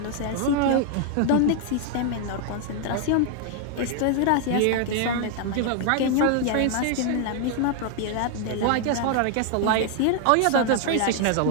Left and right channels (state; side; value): different; both; correlation 0.00